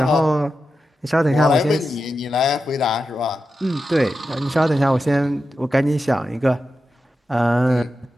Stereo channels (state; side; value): normal; both; correlation 0.90